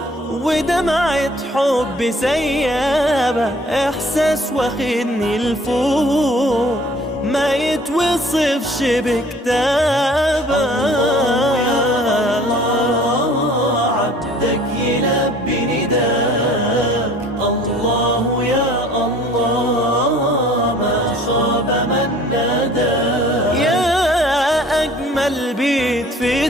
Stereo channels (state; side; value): normal; both; correlation 0.52